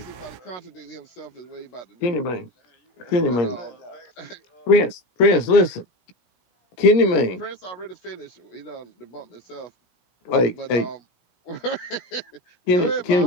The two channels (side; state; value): right; late; 17 ms